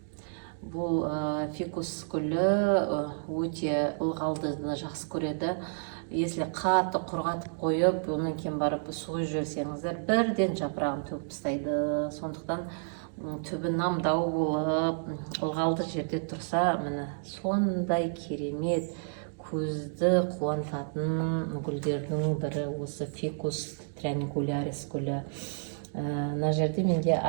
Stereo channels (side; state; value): left; silent; digital silence